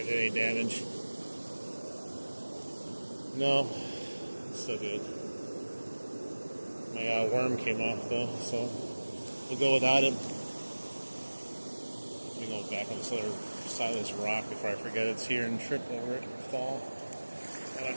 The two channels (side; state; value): both; inverted; correlation -1.00